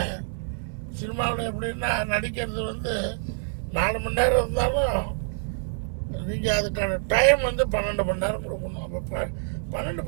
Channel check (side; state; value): left; silent; digital silence